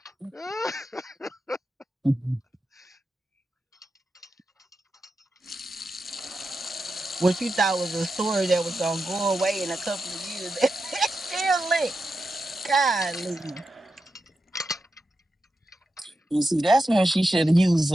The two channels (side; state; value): both; normal; correlation 0.89